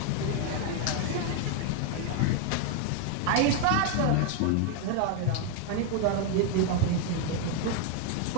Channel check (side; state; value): both; different; correlation 0.01